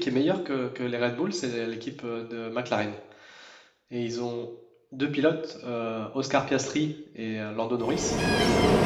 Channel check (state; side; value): identical; both; correlation 1.00